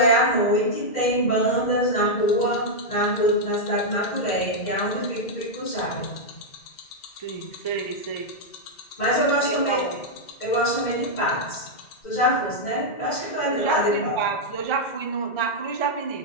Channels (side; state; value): right; late; 2.1 ms